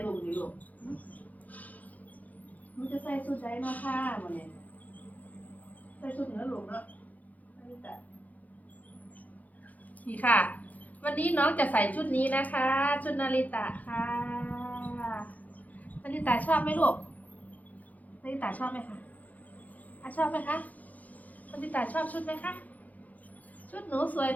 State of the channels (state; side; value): late; right; 0.078 ms